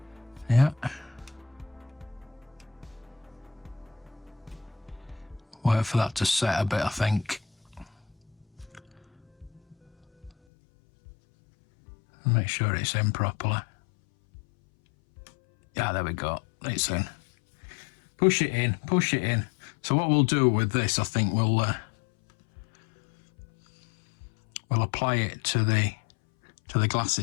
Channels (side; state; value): right; drops out; at 10.3 s